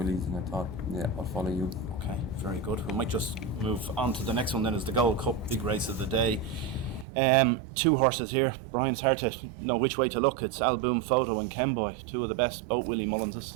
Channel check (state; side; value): drops out; left; at 7.1 s